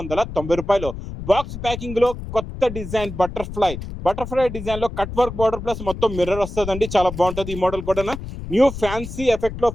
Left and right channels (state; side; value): noise; left; rumble, 9 dB below the sound